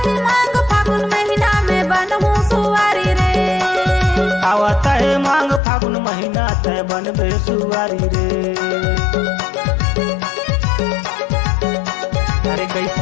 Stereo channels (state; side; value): drops out; right; at 5.6 s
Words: मांग फागुन महीना में बनहूँ सुवारी रे आवता है मांग फागुन महीना तय बनबे सुवारी रे अरे